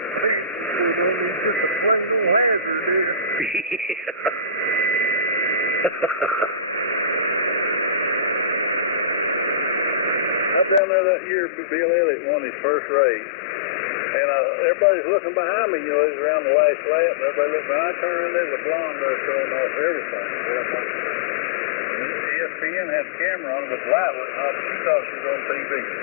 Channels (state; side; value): drops out; right; at 10.8 s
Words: just a plain old hazard, dude. I'm down there that year for Bill Elliott on his first race. And everybody's looking behind me, you know, he's around the last lap, and everybody looks behind. I turn around, there's a blonde there showing off everything. ESPN had a camera on it, but the light wasn't on, but she thought she was on TV.